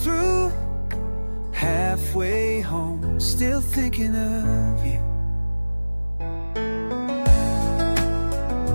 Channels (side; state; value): both; inverted; correlation -1.00